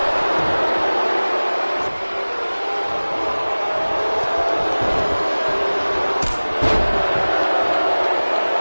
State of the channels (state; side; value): inverted; both; correlation -1.00